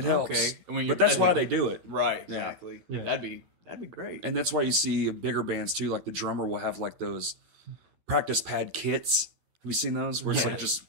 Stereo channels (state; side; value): late; left; 12 ms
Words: helps. Okay, and when But that's at why the- they do it. right Yeah. exactly. Yeah. That'd be great. And that's why you see bigger bands too. Like the drummer will have like those practice pad kits. Have you seen those? Where it's Yeah. like just